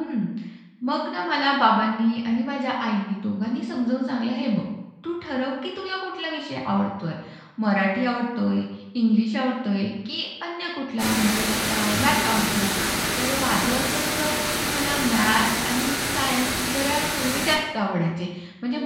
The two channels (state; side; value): identical; both; correlation 1.00